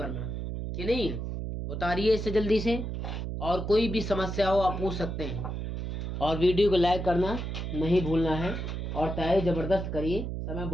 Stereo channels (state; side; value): noise; right; hum, 4 dB below the sound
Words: कि नहीं है? उतारिए इसे जल्दी से, और कोई भी समस्या हो आप पूछ सकते हैं। और वीडियो को लाइक करना नहीं भूलना है और तैयारी जबरदस्त करिए, समय